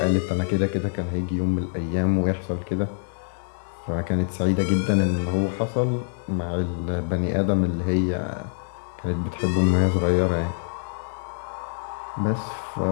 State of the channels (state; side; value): silent; right; digital silence